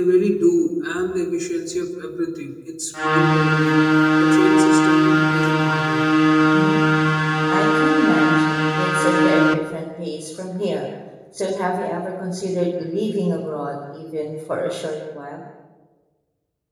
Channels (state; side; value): identical; both; correlation 1.00